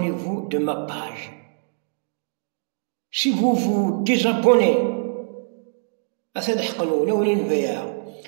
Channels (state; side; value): silent; left; digital silence